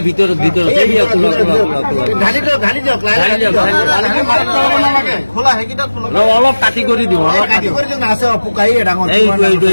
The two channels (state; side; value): inverted; both; correlation -1.00